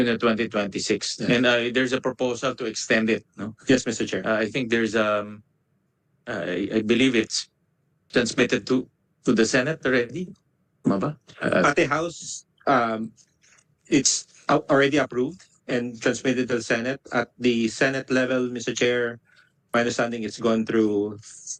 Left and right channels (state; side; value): identical; both; correlation 1.00